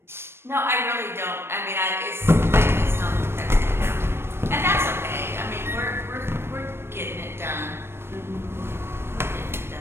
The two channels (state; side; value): late; left; 0.12 ms